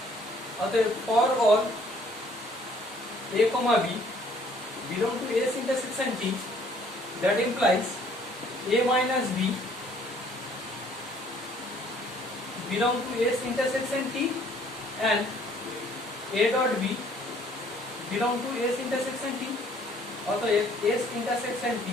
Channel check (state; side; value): normal; both; correlation 0.60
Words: অতএব for all a comma b belong to S intersection T, that implies a minus b belong to S intersection T and a dot b belong to S intersection T। অতএব S intersection T